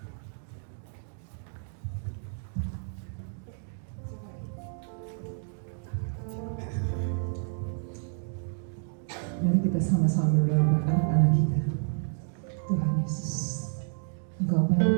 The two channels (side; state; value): left; silent; digital silence